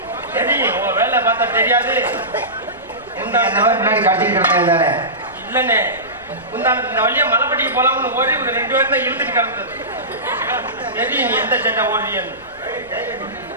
தெரியும் உன் வேலை பார்த்தா தெரியாது. இல்லண்ணே, இந்த வழியா மலைப்பட்டிக்கு போலாம்னு ஓடி ஒரு 2 பேரும் தான் இழுத்துட்டு கிடந்தது. தெரியும் நீ எந்த சண்டை ஓடுறியன்னு.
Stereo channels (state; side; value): noise; left; rumble, 26 dB below the sound